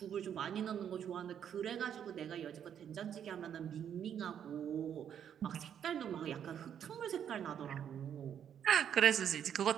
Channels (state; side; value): quieter; left; 9.0 dB